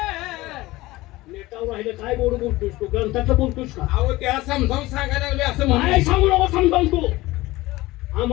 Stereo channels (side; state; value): right; quieter; 19.1 dB